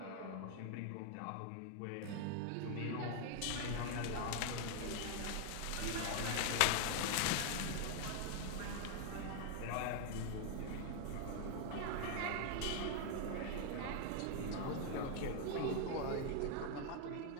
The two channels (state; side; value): different; both; correlation 0.00